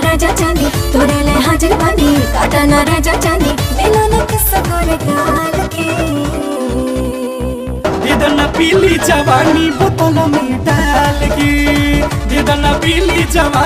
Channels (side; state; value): both; identical; correlation 1.00